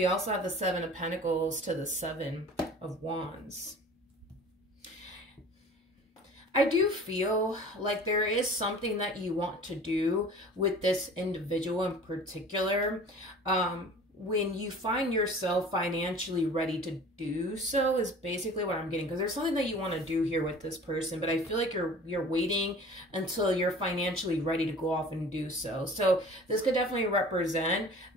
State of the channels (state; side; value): normal; both; correlation 0.43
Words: also have the Seven of Pentacles to the Seven of Wands. I do feel like there is something that you want to do with this individual in particular. When you find yourself financially ready to do so is basically what I'm getting, because there's something that you want to do here with this person, but I feel like you're waiting until you're financially ready to go off and do so. So this could definitely represent